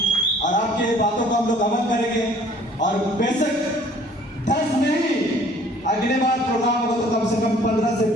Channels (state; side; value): normal; both; correlation 0.55